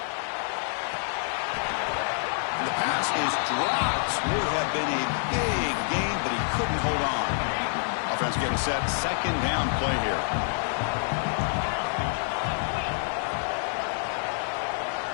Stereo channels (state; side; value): silent; right; 60 dB below the other